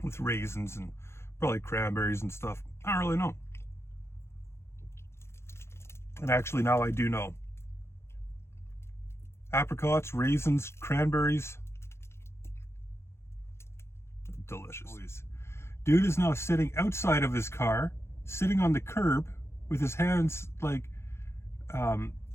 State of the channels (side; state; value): right; late; 0.13 ms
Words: with raisins and probably cranberries and stuff. I don't really know. And actually now I do know. Apricots, raisins, cranberries. Delicious. Dude is now sitting outside of his car, sitting on the curb with his hands like